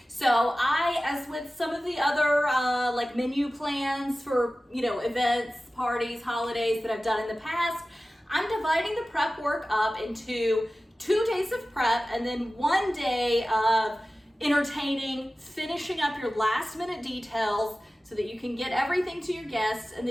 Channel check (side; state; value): both; normal; correlation 0.96